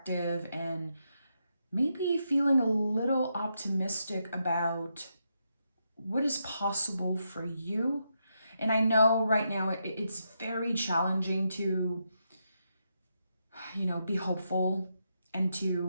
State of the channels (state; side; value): inverted; both; correlation -0.82